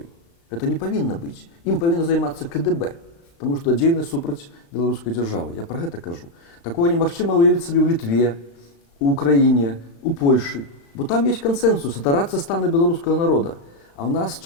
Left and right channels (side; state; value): right; late; 35 ms